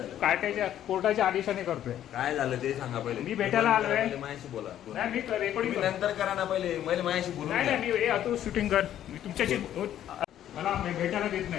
कायद्याच्या कोर्टाच्या आदेशाने करतोय. काय झालं ते सांगा पहिले. मी भेटायला आलोय. पहिले माझ्याशी बोला. नाही, मी रेकॉर्डिंग तुम्ही नंतर करा ना, पहिले माझ्याशी बोलून नाही घ्या. नाही, मी तू शूटिंग कर. मी तुमच्याशी मला भेटायला देत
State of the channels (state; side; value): quieter; right; 11.3 dB